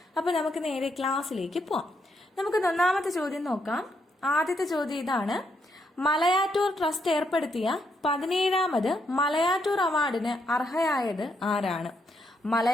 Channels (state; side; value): normal; both; correlation 0.77